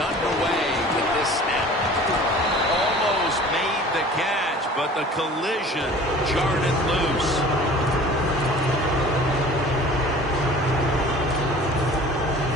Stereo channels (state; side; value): normal; both; correlation 0.45